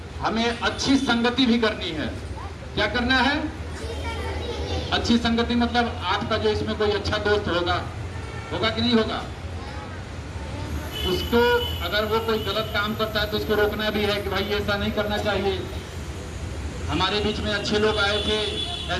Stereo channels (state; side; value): identical; both; correlation 1.00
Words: हमें अच्छी संगति भी करनी है। क्या करना है? अच्छी संगति मतलब आपका जो इसमें कोई अच्छा दोस्त होगा कि नहीं होगा, उसको अगर वो कोई गलत काम करता है तो उसको रोकना भी है कि भाई ऐसा नहीं करना चाहिए। हमारे बीच में अच्छे लोग आए थे,